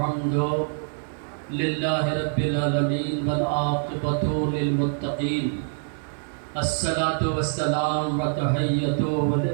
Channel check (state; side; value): silent; left; digital silence